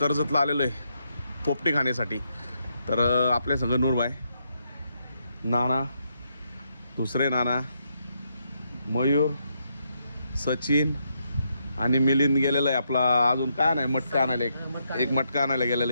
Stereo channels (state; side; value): inverted; both; correlation -0.79